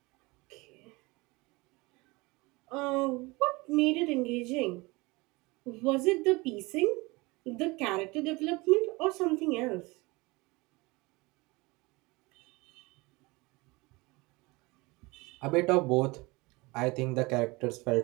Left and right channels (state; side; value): quieter; left; 24.1 dB